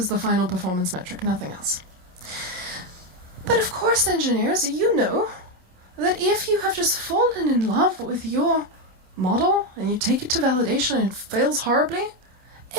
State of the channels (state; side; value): late; left; 27 ms